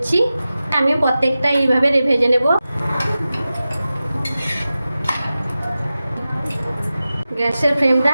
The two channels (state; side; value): inverted; both; correlation -0.94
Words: আমি প্রত্যেকটা এইভাবে ভেজে নেব। গ্যাসের ফ্লেমটা